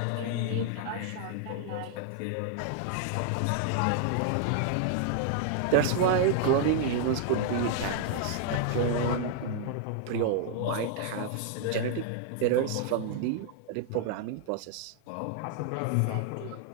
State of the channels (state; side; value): different; both; correlation 0.00